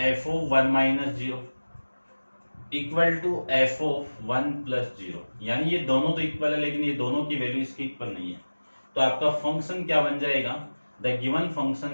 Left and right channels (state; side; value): inverted; both; correlation -1.00